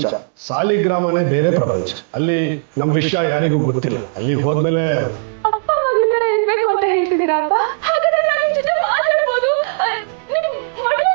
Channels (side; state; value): left; silent; digital silence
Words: ಸಾಲಿಗ್ರಾಮನೇ ಬೇರೆ ಪ್ರಪಂಚ. ಅಲ್ಲಿ ನಮ್ಮ ವಿಷಯ ಯಾರಿಗೂ ಗೊತ್ತಿಲ್ಲ. ಅಲ್ಲಿ ಹೋದ್ಮೇಲೆ ಅಪ್ಪ ಮಗಳ ಇರ್ಬೇಕು ಅಂತ ಹೇಳ್ತಿದ್ದೀರಾ ಅಪ್ಪ? ಹಾಗಾದ್ರೆ ನಾನು ನಿಮ್ ಜೊತೆ ಮಾತಾಡ್ಬೋದು, ನಿಮ್ ಮಗಳು